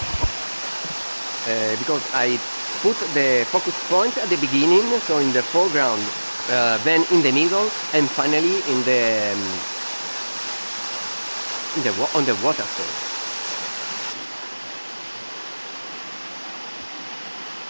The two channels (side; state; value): both; inverted; correlation -1.00